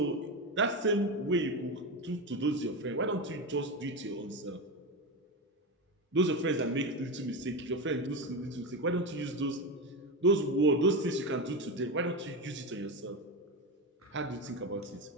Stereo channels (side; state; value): both; normal; correlation 0.17